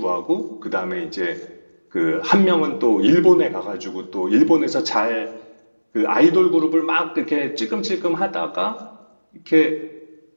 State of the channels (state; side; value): inverted; both; correlation -1.00